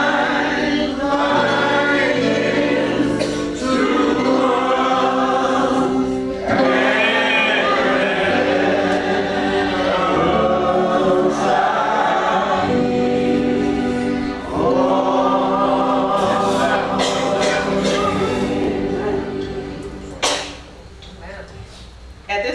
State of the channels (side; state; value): both; identical; correlation 1.00